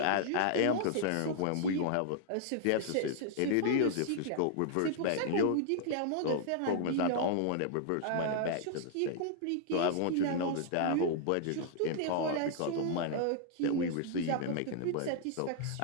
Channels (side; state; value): both; different; correlation -0.01